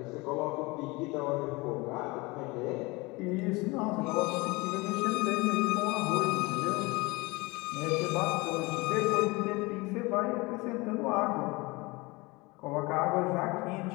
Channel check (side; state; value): right; quieter; 24.2 dB